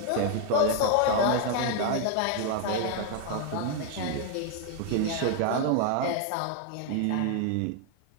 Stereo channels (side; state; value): both; different; correlation 0.00